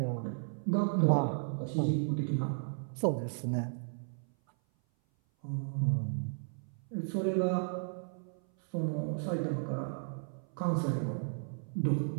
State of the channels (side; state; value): left; silent; 55 dB below the other